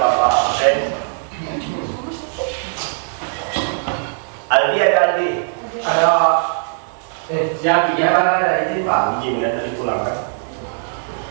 absen. Aldi ada Aldi? Ada. Siap, iya kan ada izin Pak. Izin kan tadi pulang kan?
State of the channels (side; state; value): left; silent; digital silence